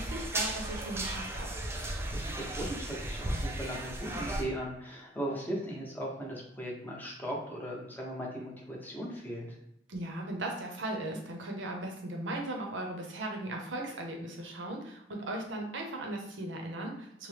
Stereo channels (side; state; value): both; normal; correlation 0.47